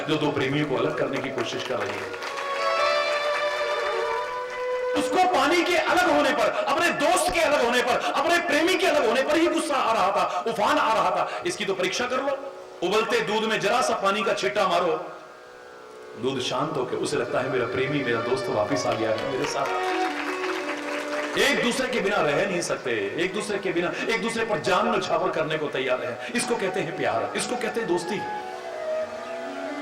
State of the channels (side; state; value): both; identical; correlation 1.00